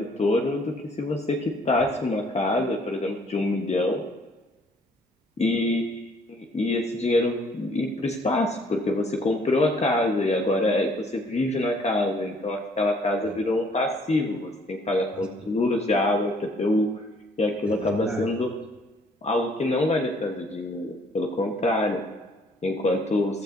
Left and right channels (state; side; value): normal; both; correlation 0.61